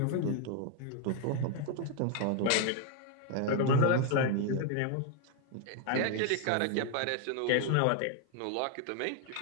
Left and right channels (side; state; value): both; different; correlation 0.00